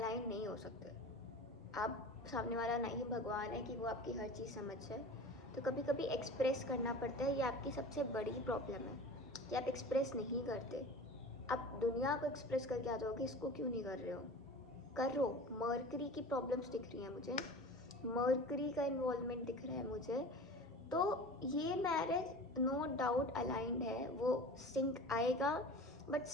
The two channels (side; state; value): both; normal; correlation 0.37